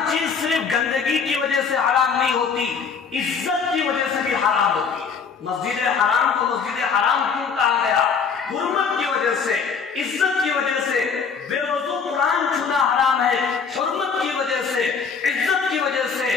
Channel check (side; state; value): right; quieter; 5.8 dB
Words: چیز صرف گندگی کی وجہ سے حرام نہیں ہوتی، عزت کی وجہ سے بھی حرام ہوتی. مسجد حرام کو مسجد حرام کیوں کہا گیا؟ حرمت کی وجہ سے، عزت کی وجہ سے. بے وضو قرآن چھونا حرام ہے، حرمت کی وجہ سے، عزت کی وجہ